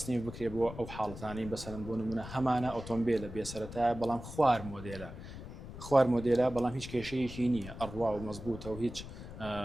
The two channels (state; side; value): noise; left; rumble, 11 dB below the sound